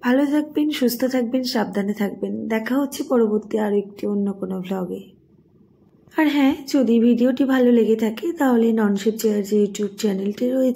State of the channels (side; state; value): both; identical; correlation 1.00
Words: ভালো থাকবেন, সুস্থ থাকবেন, সাবধানে থাকবেন। দেখা হচ্ছে পরবর্তী আরও একটি অন্য কোনো ব্লগে। আর হ্যাঁ, যদি ভিডিওটি ভালো লেগে থাকে তাহলে ননশেপ চেয়ার যে ইউটিউব চ্যানেলটি